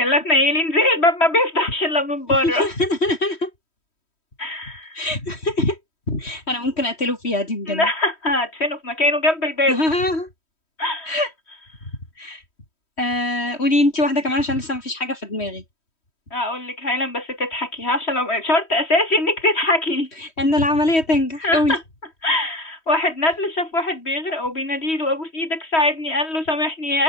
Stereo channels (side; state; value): right; late; 3.1 ms